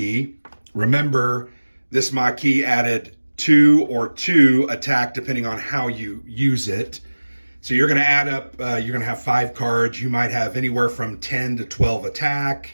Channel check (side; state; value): both; inverted; correlation -1.00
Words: Remember, this McKee added 2 or 2 attack depending on how you use it. So you're going to add up, you're going to have 5 cards. You might have anywhere from 10 to 12